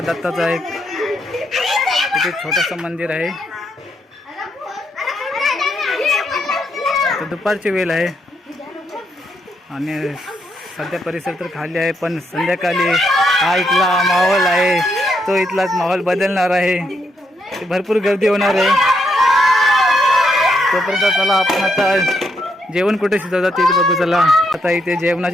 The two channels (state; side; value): normal; both; correlation 0.78